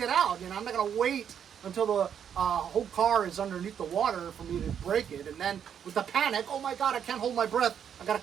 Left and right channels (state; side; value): quieter; left; 8.4 dB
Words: out, you know. I'm not going to wait until the whole car is underneath the water for me to break it. And then with the panic, oh my God, I can't hold my breath. I got to